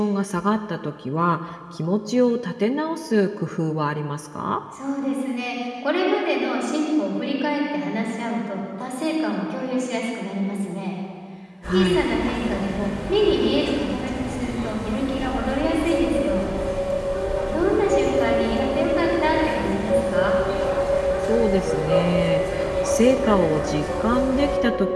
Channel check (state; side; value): identical; both; correlation 1.00